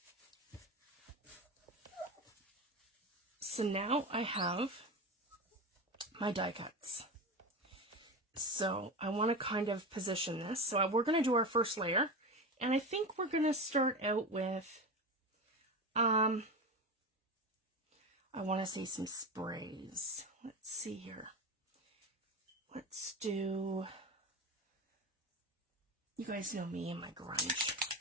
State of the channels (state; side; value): normal; both; correlation 0.23